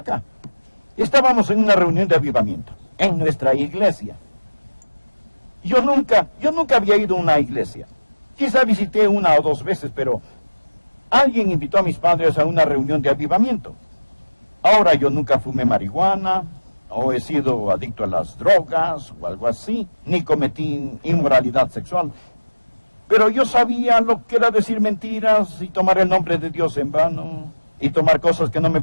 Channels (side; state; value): both; inverted; correlation -1.00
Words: Estábamos en una reunión de avivamiento, en nuestra iglesia. Yo nunca había ido a una iglesia. Quizá visité una o dos veces, pero alguien invitó a mis padres a una reunión de avivamiento. Ahora yo nunca fumé marihuana, o he sido adicto a las drogas, o algo así, ni cometí inmoralidad sexual. Pero yo sabía lo que era decir mentiras y tomar el nombre de Dios en vano, y tomar cosas que no me